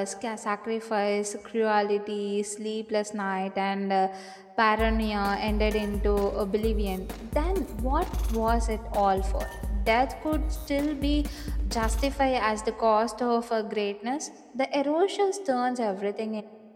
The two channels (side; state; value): both; identical; correlation 1.00